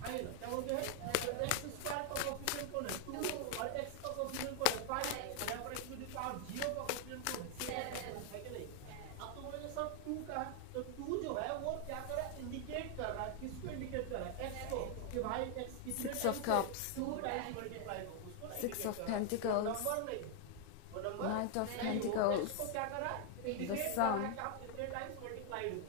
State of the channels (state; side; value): different; both; correlation 0.00